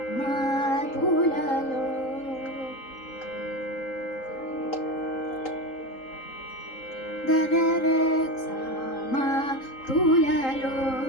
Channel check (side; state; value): right; late; 3.8 ms